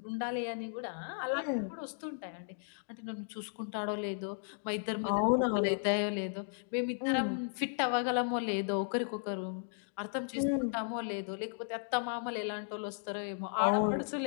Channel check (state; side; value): silent; right; digital silence